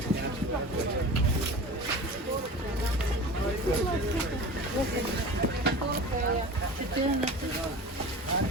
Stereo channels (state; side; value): normal; both; correlation 0.35